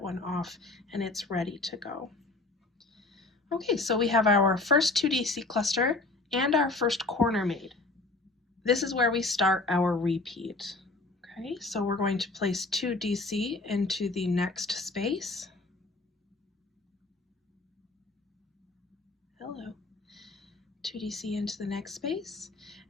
one off and it's ready to go. Okay, so we have our first 2DC cluster and our first corner made. This is where we start our repeat. Okay, so we're going to place 2DC into the next space. Hello. 2DC into the next space,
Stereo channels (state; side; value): quieter; right; 3.2 dB